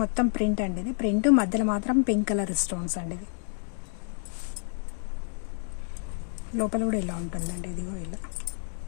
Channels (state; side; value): silent; right; 59 dB below the other